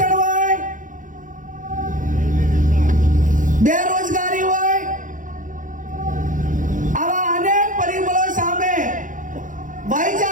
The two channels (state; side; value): late; left; 0.38 ms